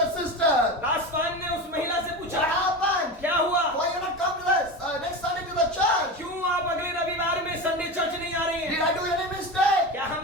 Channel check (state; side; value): normal; both; correlation 0.25